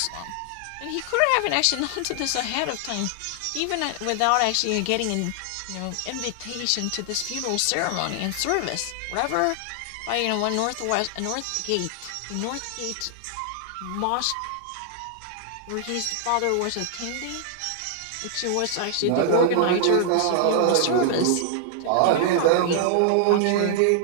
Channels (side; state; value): both; different; correlation 0.00